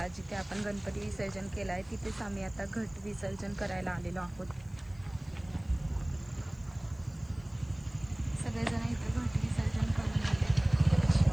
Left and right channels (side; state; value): left; noise; hiss, 30 dB below the sound